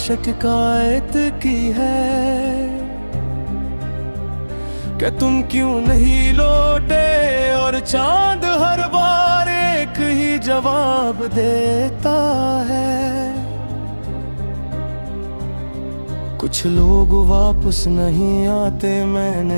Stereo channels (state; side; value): inverted; both; correlation -1.00